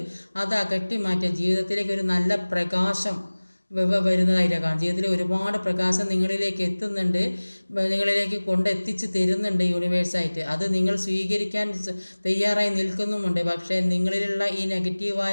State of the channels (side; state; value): both; inverted; correlation -1.00